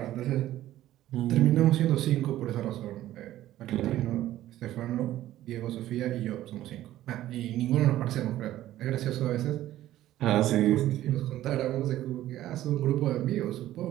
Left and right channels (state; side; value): quieter; left; 13.9 dB